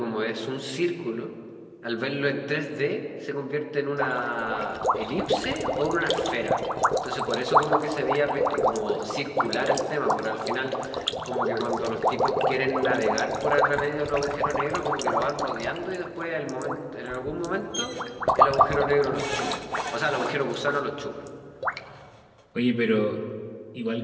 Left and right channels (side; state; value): both; identical; correlation 1.00